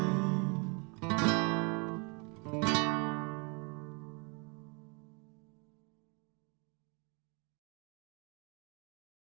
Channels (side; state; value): left; quieter; 33.1 dB